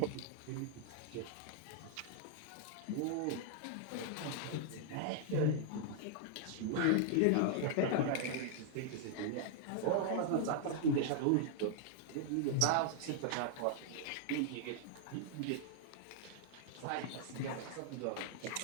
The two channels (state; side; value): different; both; correlation -0.01